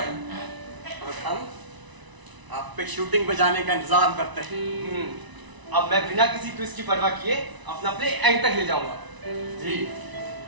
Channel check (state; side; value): late; left; 1.0 ms